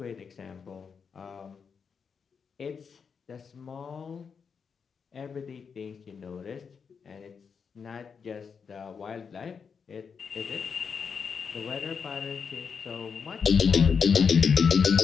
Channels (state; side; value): quieter; right; 6.1 dB